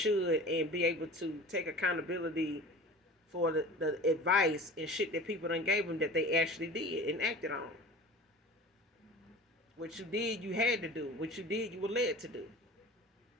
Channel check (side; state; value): both; normal; correlation 0.38